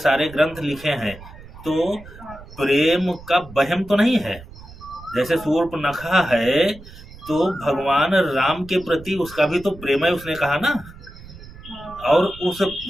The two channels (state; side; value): noise; right; rumble, 18 dB below the sound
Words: ग्रंथ लिखे हैं। तो प्रेम का वहम तो नहीं है। जैसे शूर्पणखा है, तो भगवान राम के प्रति उसका भी तो प्रेम है, उसने कहा ना। और उस